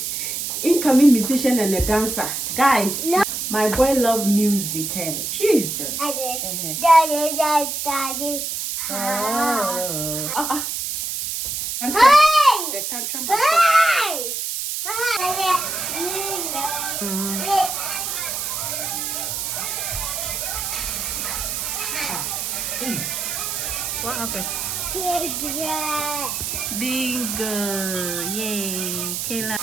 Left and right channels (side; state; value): right; noise; hiss, 3 dB below the sound